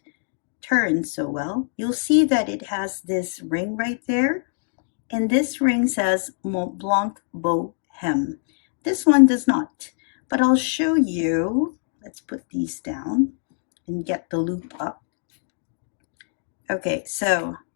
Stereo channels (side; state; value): right; silent; digital silence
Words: turn so well, you'll see that it has this ring right there, and this ring says Montblanc Boheme. This one does not, but I'll show you. Let's put these down and get the loop up. Okay, so